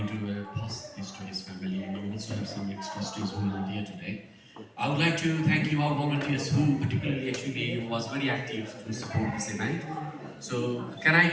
to pass this to his family, and we also have some ex-trustees who are here today. I would like to thank you, our volunteers, who particularly actually was very active to support this event. So can I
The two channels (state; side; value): identical; both; correlation 1.00